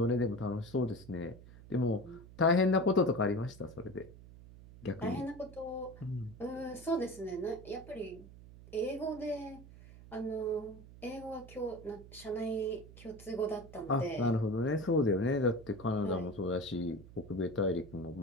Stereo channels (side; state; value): right; noise; hum, 18 dB below the sound